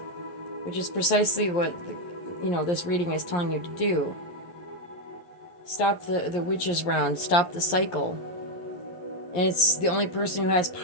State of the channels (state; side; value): late; right; 11 ms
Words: which is precisely what, this reading is telling you to do. Stop the witch's round. Stop the cycle. And it's the only person who has